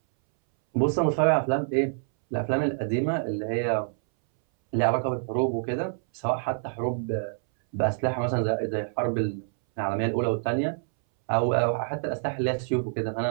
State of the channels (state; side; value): silent; left; 60 dB below the other